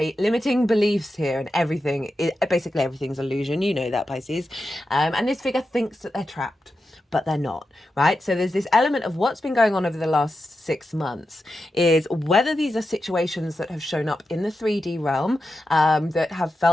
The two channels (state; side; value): normal; both; correlation 0.90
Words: beliefs here, and basically everything's illusion. You know that, Pisces. And this figure thinks that they're trapped, but they're not, right? So there's this element of what's been going on over the last 6 months is whether these are situations that have shown up in the 3D realm, that have